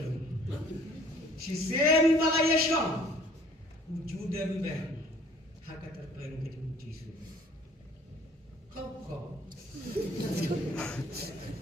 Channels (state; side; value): normal; both; correlation 0.55